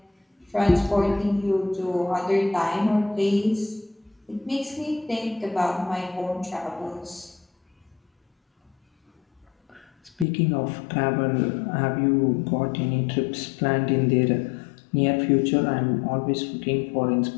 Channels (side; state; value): right; drops out; at 10.2 s